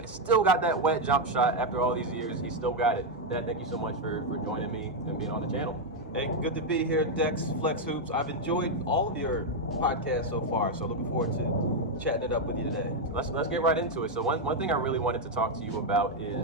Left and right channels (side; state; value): both; normal; correlation 0.02